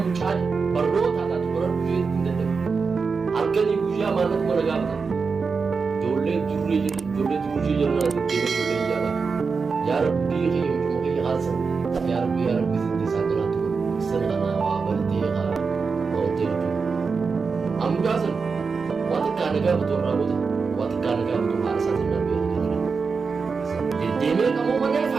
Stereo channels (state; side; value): quieter; left; 5.0 dB